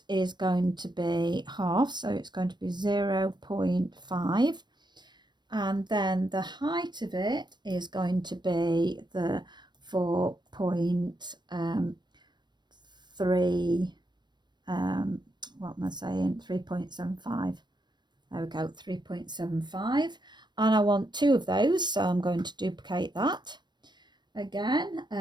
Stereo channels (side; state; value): left; late; 0.21 ms